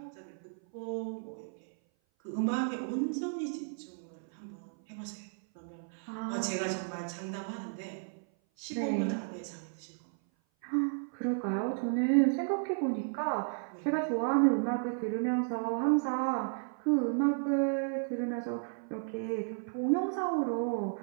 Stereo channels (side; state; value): left; silent; 55 dB below the other